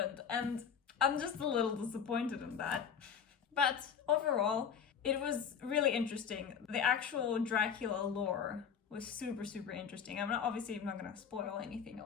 And I'm just a little disappointed in that. But overall, it was really interesting. The actual Dracula lore was super, super interesting. I'm not gonna spoil anything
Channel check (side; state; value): right; quieter; 7.3 dB